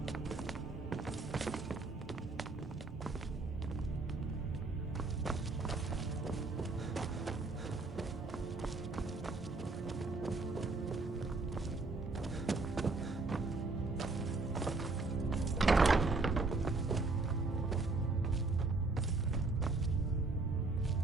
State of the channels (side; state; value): left; quieter; 3.6 dB